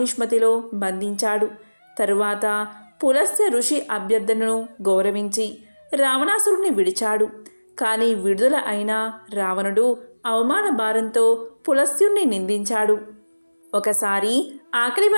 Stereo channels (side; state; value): both; inverted; correlation -1.00